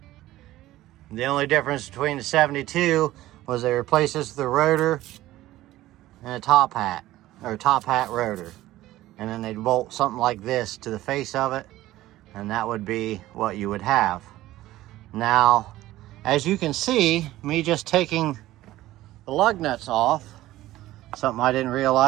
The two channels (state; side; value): quieter; left; 15.8 dB